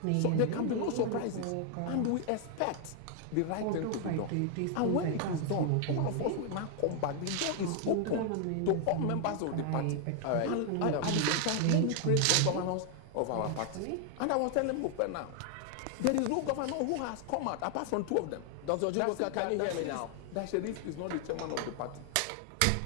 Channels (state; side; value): different; both; correlation 0.00